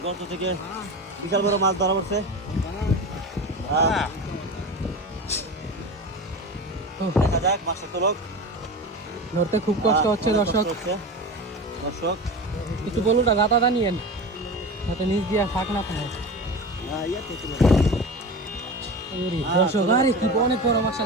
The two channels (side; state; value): both; normal; correlation 0.29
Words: গর্ত থেকে বিশাল বড় মাছ ধরা পড়ছে। দেখা যাক মাছটা তোলক। ধরতে খুব কষ্ট হচ্ছে দর্শক। কিছু বলুন না, গাতাটা নিয়েন যাতে নিচ দিয়ে ফাঁক না পায়। দর্শক আরে কি অনেক বড়